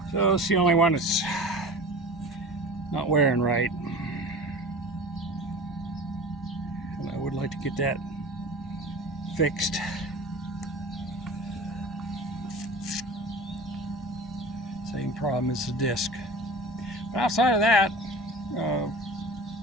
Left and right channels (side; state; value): both; normal; correlation 0.37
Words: So it's the only one that's not wearing right. And I would like to get that fixed. Same problem as the disc. But outside of that,